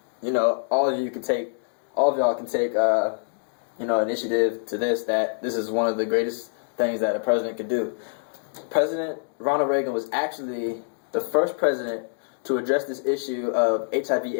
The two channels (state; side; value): silent; right; digital silence